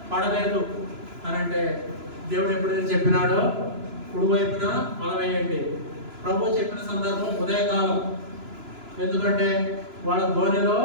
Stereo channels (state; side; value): late; left; 3.0 ms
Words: పడలేదు అని. అంటే దేవుడు ఎప్పుడైతే చెప్పినాడో కుడివైపున వల వేయండి. ప్రభు చెప్పిన సందర్భం ఉదయకాలం. ఎందుకంటే వాళ్ళ ధోనిలో